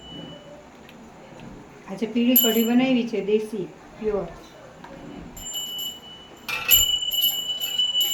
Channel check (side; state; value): both; identical; correlation 1.00